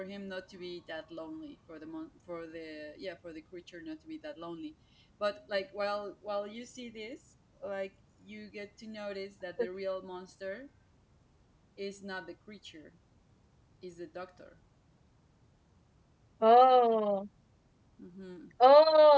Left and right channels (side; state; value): both; identical; correlation 1.00